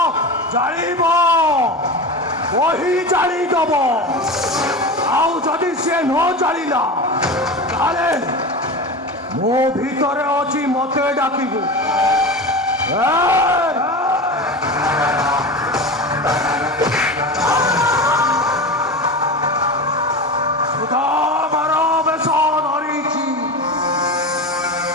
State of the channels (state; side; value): normal; both; correlation 0.27